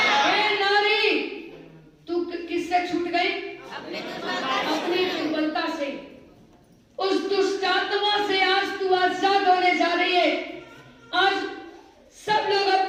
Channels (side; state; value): both; identical; correlation 1.00